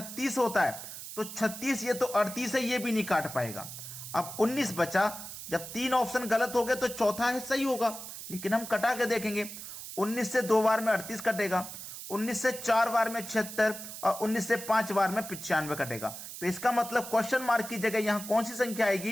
होता है, तो 36 ये तो 38 है, ये भी नहीं काट पाएगा। अब 19 बचा, जब 3 ऑप्शन गलत हो गए तो चौथा है सही होगा, लेकिन हम कटा के देखेंगे। 19 से 2 बार में 38 कटेगा, 19 से 4 बार में 76 और 19 से 5 बार में 95 कटेगा। तो इसका मतलब क्वेश्चन मार्क की जगह यहां कौन सी संख्या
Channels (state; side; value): noise; right; hiss, 10 dB below the sound